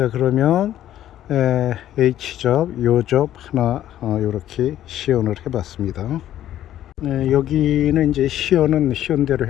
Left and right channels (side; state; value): right; quieter; 12.2 dB